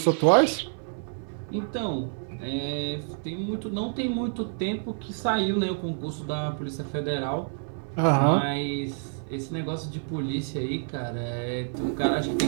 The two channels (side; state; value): left; silent; 59 dB below the other